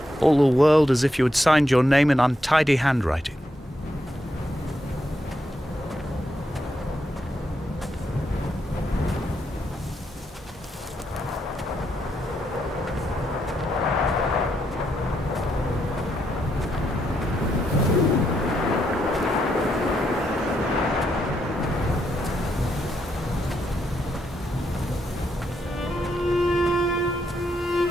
all the world as if you had signed your name in untidy handwriting.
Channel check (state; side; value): normal; both; correlation 0.80